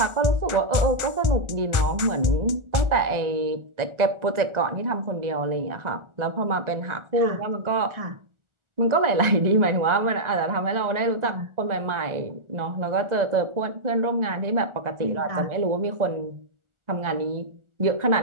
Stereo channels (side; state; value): left; late; 1.4 ms